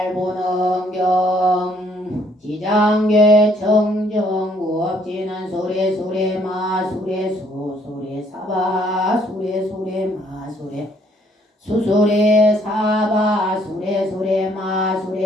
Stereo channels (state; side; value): normal; both; correlation 0.65